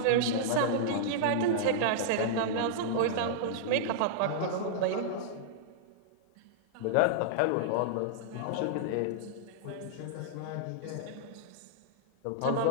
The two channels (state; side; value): different; both; correlation -0.02